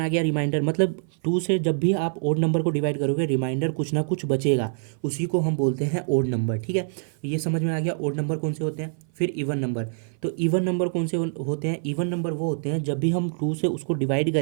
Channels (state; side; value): silent; left; 57 dB below the other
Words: गया रिमाइंडर। मतलब 2 से जब भी आप ओड नंबर को डिवाइड करोगे रिमाइंडर कुछ ना कुछ बचेगा, उसी को हम बोलते हैं ओड नंबर, ठीक है। ये समझ में आ गया ओड नंबर कौन से होते हैं। फिर इवन नंबर, तो इवन नंबर कौन से होते हैं, इवन नंबर वो होते हैं जब भी हम 2 से उसको डिवाइड